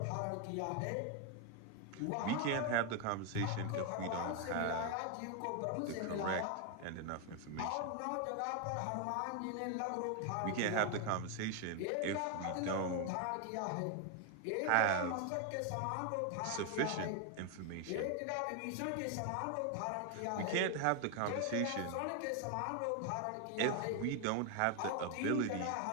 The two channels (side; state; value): both; different; correlation 0.01